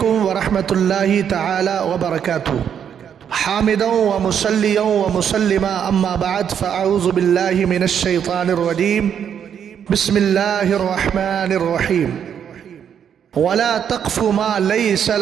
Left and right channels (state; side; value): quieter; left; 8.4 dB